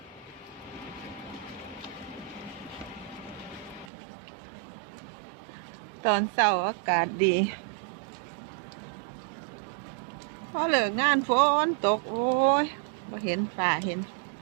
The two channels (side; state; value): left; drops out; at 3.9 s